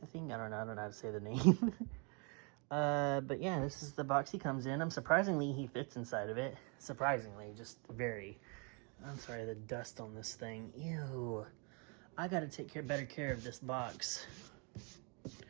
I think. I don't know how to say the name. But yeah, this is the box he comes in. Surprisingly, he fits inside of it. Surprisingly, just very. I'm sorry, the dust on this thing. Ew. I gotta take better care of this box.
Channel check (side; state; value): left; quieter; 34.4 dB